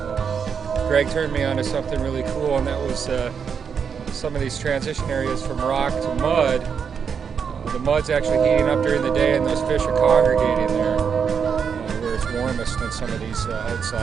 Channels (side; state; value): left; quieter; 6.7 dB